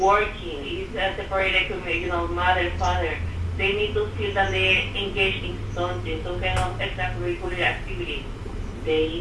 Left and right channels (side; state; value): both; identical; correlation 1.00